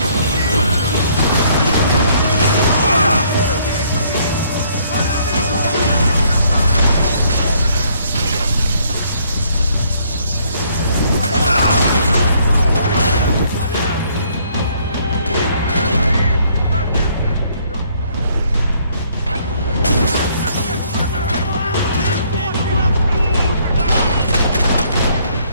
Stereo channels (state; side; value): inverted; both; correlation -0.65